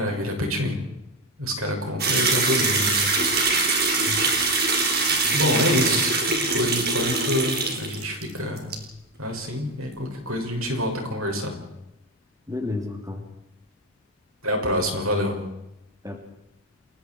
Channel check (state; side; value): normal; both; correlation 0.12